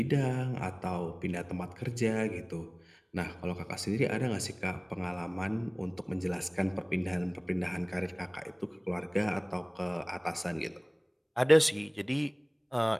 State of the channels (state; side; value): identical; both; correlation 1.00